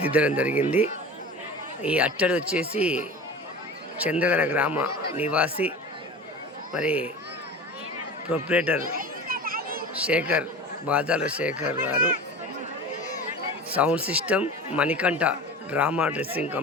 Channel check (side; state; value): both; normal; correlation 0.35